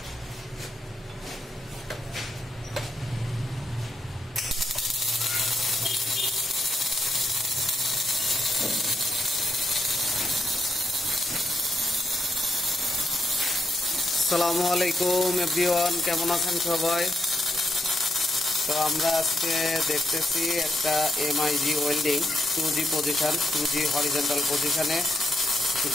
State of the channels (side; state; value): both; normal; correlation 0.79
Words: আসসালামু আলাইকুম এভরিওয়ান, কেমন আছেন সবাই? তো আমরা আজকে দেখতেছি একটা MiG welding 2G position, 2G horizontal পজিশনে